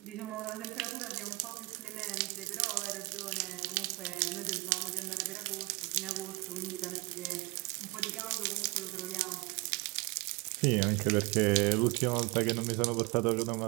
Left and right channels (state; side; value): quieter; left; 25.6 dB